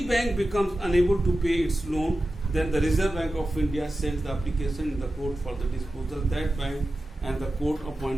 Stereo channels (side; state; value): both; normal; correlation 0.93